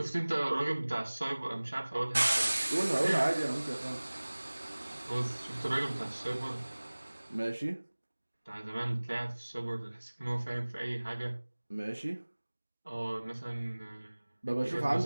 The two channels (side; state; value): both; inverted; correlation -1.00